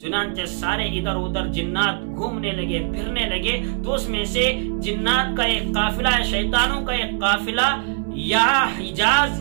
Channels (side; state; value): left; silent; digital silence